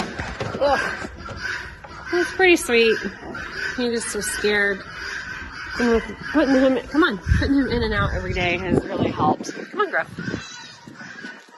he's pretty sweet. He just was scared. And with putting him in and out every day has really helped. Come on, Gruff.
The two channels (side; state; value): both; identical; correlation 1.00